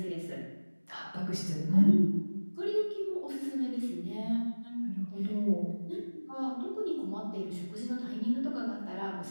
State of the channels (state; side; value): inverted; both; correlation -1.00